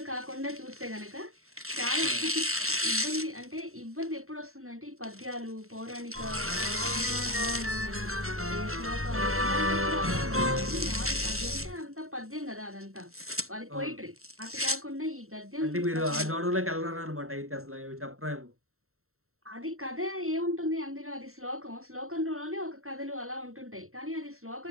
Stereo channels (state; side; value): late; left; 0.63 ms